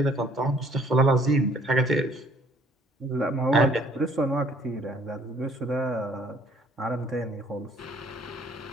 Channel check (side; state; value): both; normal; correlation 0.60